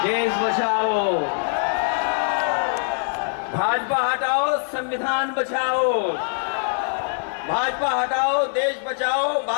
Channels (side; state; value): right; silent; 62 dB below the other